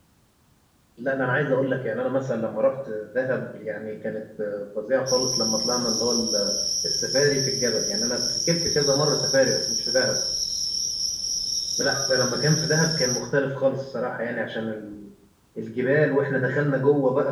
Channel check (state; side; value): identical; both; correlation 1.00